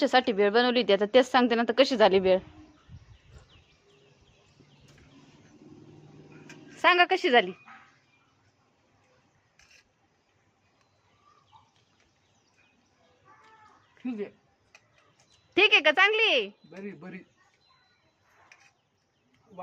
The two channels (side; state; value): both; identical; correlation 1.00